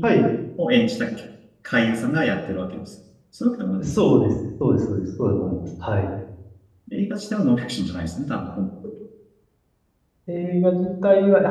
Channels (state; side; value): identical; both; correlation 1.00